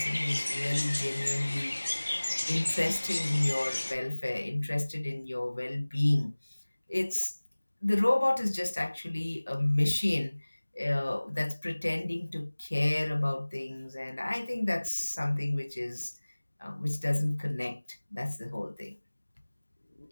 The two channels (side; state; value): both; inverted; correlation -1.00